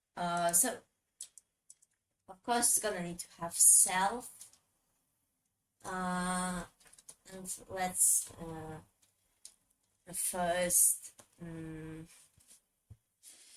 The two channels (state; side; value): identical; both; correlation 1.00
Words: So of course it's gonna need to have self. And let's first